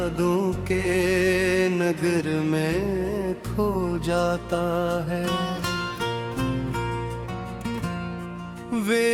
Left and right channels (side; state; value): both; identical; correlation 1.00